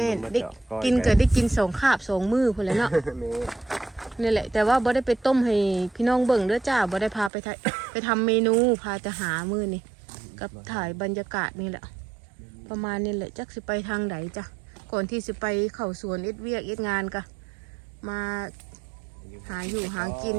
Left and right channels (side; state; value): left; drops out; at 7.3 s